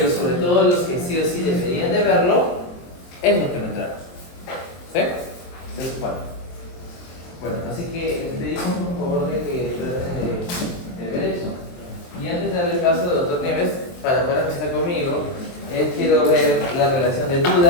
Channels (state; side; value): late; right; 23 ms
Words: sobre todo los que sí o sí deberían de verlo, es los que no entraron. ¿Sí? Entonces, bueno, así que pedimos por favor de que traten de ver eso. Y antes de darle paso al doctor Nieves, para poder empezar conmigo, quiero ver la relación de